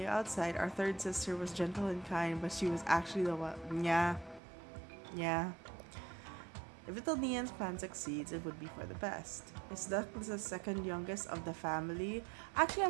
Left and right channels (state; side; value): drops out; left; at 4.4 s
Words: outside, our third sister was gentle and kind, but she was actually the one. Yeah. If little Nian's plan succeeds, it would be for the best. Is Dusk the second youngest of the family? Actually,